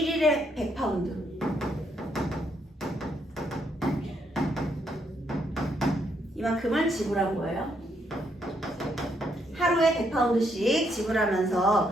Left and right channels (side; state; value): both; normal; correlation 0.74